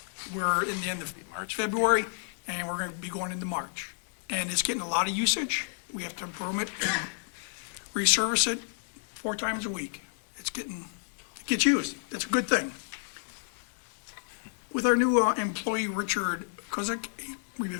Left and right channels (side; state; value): right; silent; digital silence